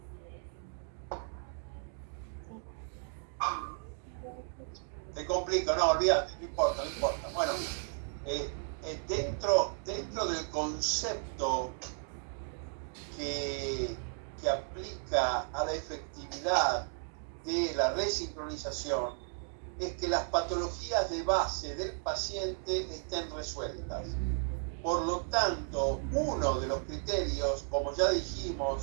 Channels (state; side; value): silent; left; 55 dB below the other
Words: Te complico, no, olvídate, no importa. Bueno, dentro del concepto que aplica a la efectividad de la resincronización es que las patologías de base del paciente estén resueltas. Por lo tanto, uno de los criterios, como ya dijimos,